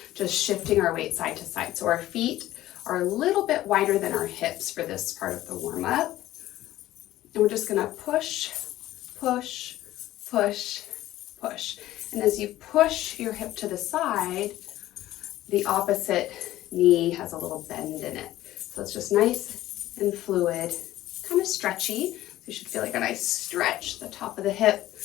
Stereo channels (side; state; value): right; quieter; 14.9 dB